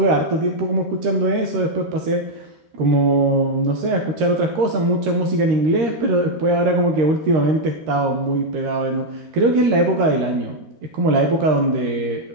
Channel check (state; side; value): late; left; 13 ms